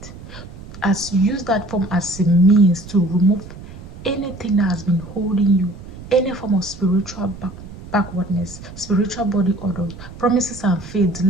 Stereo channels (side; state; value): right; noise; rumble, 15 dB below the sound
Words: As use that form as a means to remove anything that has been holding you, any form of spiritual backwardness, spiritual body odor, promises and faith,